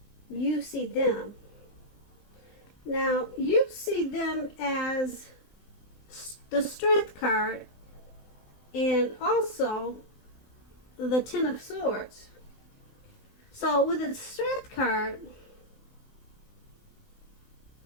you see them. Now, you see them as the Strength card and also the Ten of Swords. So with the Strength card,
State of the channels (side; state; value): right; late; 20 ms